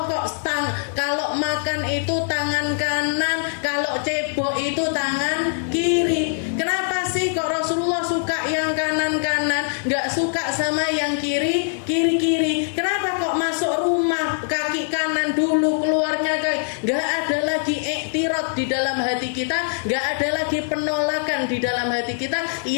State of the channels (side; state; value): right; silent; digital silence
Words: kok kalau makan itu tangan kanan, kalau cebok itu tangan kiri. Kenapa sih kok Rasulullah suka yang kanan-kanan, nggak suka sama yang kiri-kiri? Kenapa kok masuk rumah kaki kanan dulu, keluarnya kaki? Nggak ada lagi iktirad di dalam hati kita, nggak ada lagi penolakan di dalam hati kita